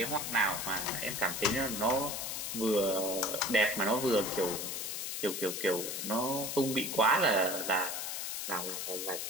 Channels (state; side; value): noise; left; hiss, 4 dB below the sound